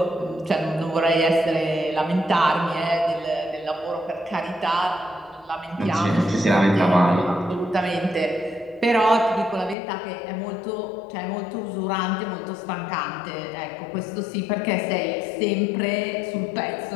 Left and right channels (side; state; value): right; drops out; at 9.8 s